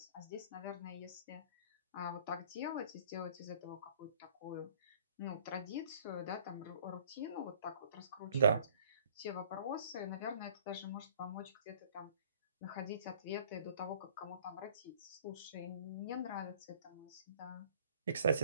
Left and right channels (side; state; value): both; inverted; correlation -0.54